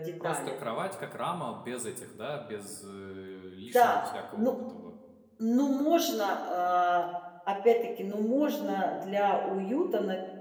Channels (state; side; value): identical; both; correlation 1.00